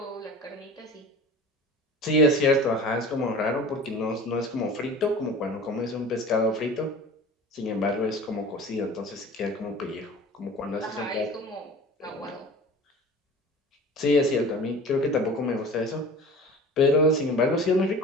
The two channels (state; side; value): normal; both; correlation 0.39